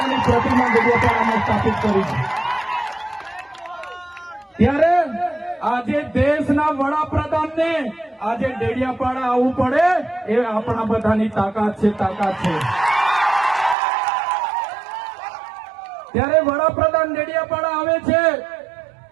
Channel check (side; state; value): left; drops out; at 13.8 s